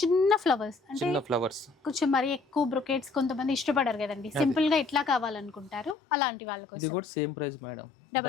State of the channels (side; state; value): right; drops out; at 6.0 s